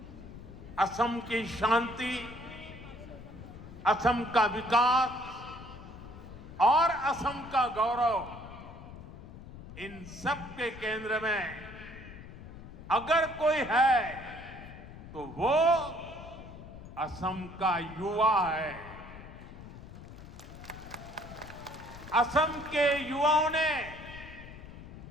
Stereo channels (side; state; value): left; noise; rumble, 14 dB below the sound